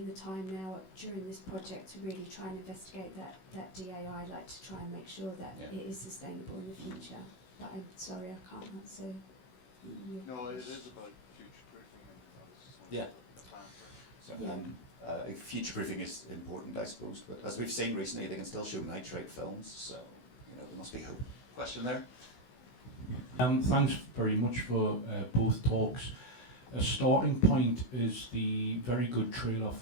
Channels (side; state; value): right; late; 16 ms